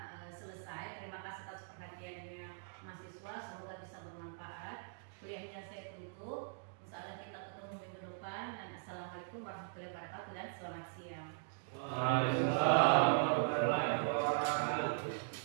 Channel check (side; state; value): left; silent; digital silence